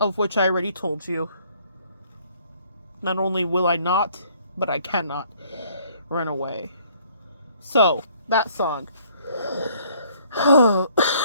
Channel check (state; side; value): inverted; both; correlation -0.62